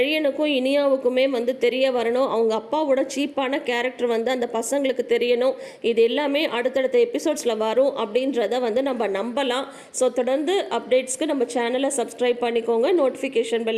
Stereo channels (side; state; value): both; identical; correlation 1.00